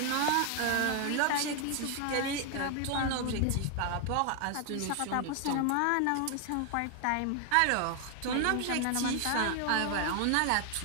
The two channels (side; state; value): both; different; correlation 0.00